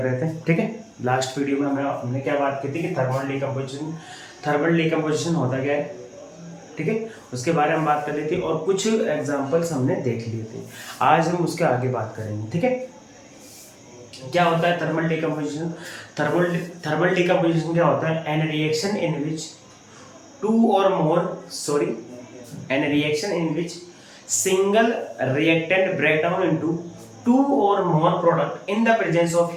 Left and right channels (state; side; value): identical; both; correlation 1.00